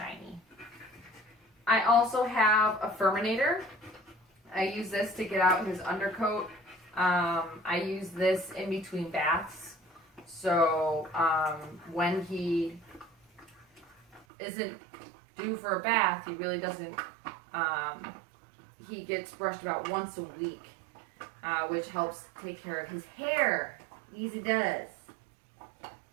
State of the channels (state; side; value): drops out; left; at 14.2 s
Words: I also have a Furminator. I use this to get out his undercoat. I use this in between baths. So when he isn't due for a bath, he really doesn't, he gets brushed about once a week, which helps take care of his hair. Easy does.